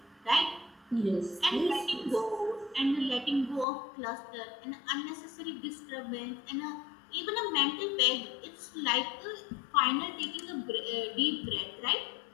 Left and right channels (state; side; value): drops out; right; at 3.7 s